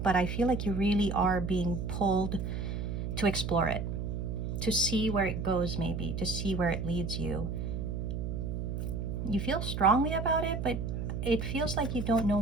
but I feel like you really are being pulled to explore it, to see where it goes, maybe, to see where it leads you. You feel strongly about it, but it feels like you don't know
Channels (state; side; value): noise; right; hum, 3 dB below the sound